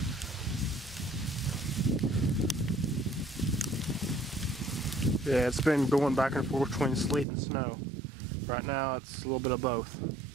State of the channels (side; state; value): left; drops out; at 7.2 s